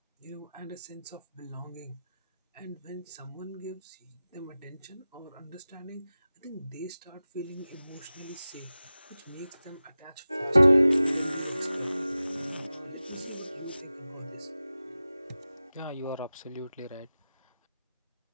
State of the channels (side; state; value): both; inverted; correlation -0.95